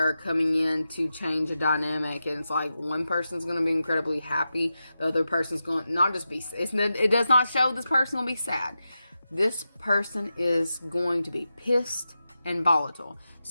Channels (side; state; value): both; inverted; correlation -0.90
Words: coming in to change a dynamic. And it's like one person's going to be incredibly happy. The other person's going to not just be, it does not show this person will be sad. This person is going to be pissed and volatile.